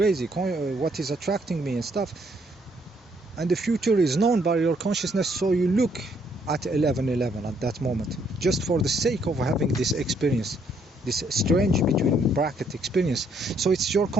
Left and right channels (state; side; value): normal; both; correlation 0.69